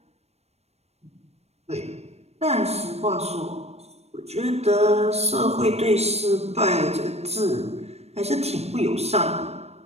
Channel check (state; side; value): late; left; 0.31 ms